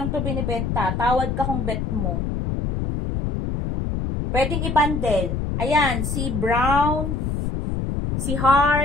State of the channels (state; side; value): noise; left; rumble, 2 dB below the sound